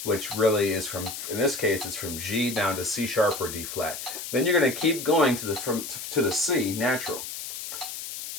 which really is from, in this case, it's from G down to C sharp or D flat. Then you're going to keep going to the C natural,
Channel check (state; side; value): noise; left; hiss, 8 dB below the sound